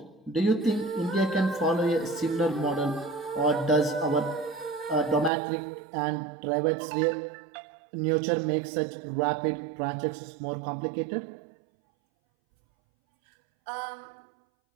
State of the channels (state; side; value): drops out; left; at 5.3 s